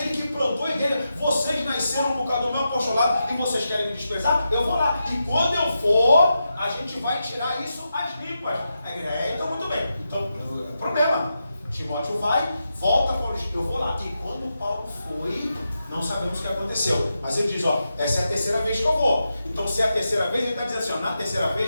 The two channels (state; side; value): inverted; both; correlation -0.87